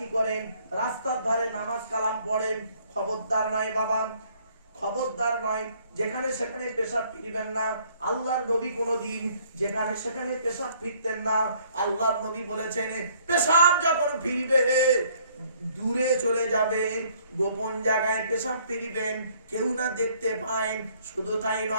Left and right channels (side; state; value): both; inverted; correlation -0.62